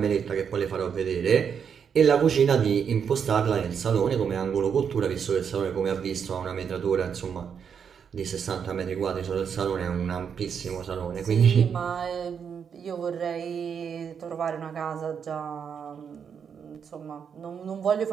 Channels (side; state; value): left; quieter; 7.2 dB